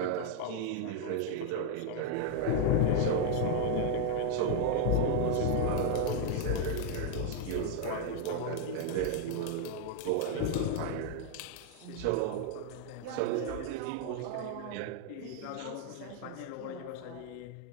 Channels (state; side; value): different; both; correlation 0.00